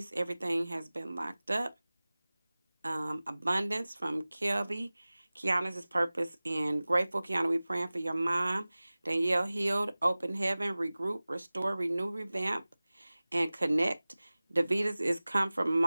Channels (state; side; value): inverted; both; correlation -0.98